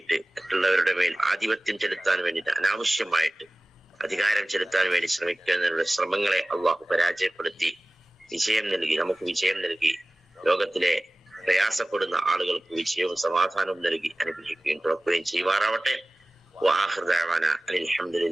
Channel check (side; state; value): both; normal; correlation 0.97